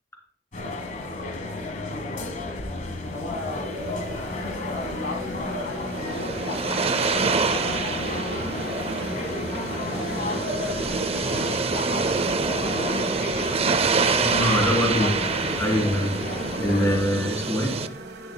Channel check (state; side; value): normal; both; correlation 0.34